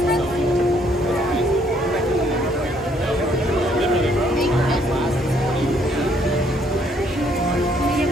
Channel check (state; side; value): normal; both; correlation 0.67